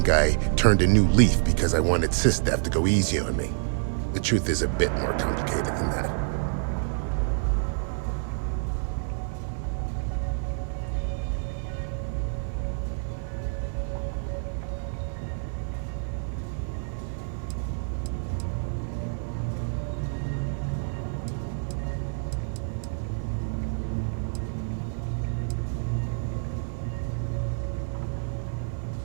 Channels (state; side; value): silent; left; 60 dB below the other